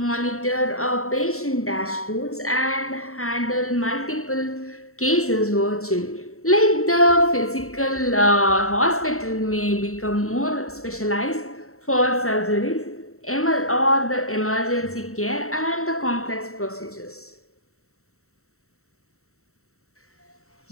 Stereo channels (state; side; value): late; right; 0.63 ms